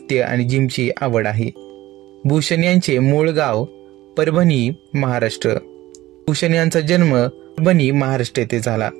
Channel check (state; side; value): quieter; left; 16.5 dB